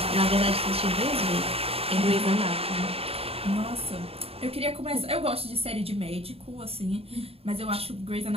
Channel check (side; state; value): left; late; 0.28 ms